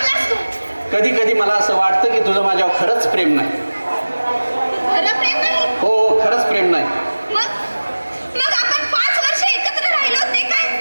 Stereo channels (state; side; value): inverted; both; correlation -1.00